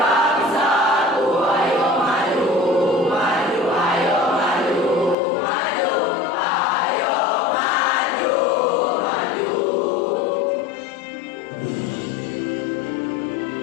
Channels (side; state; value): right; drops out; at 5.2 s